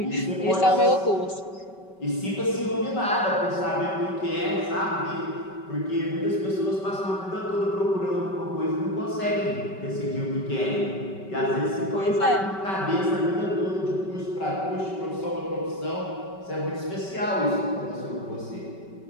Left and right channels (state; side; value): late; right; 5.2 ms